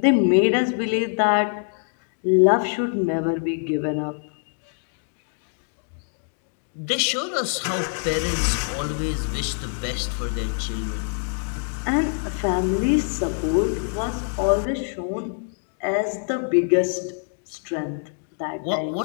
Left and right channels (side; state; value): right; silent; 62 dB below the other